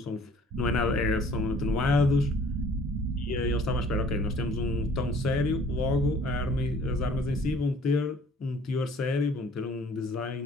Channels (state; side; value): normal; both; correlation 0.55